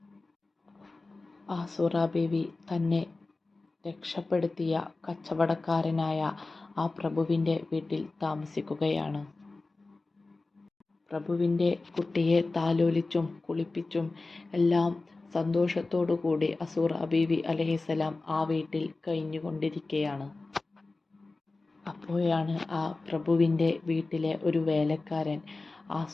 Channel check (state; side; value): quieter; right; 3.4 dB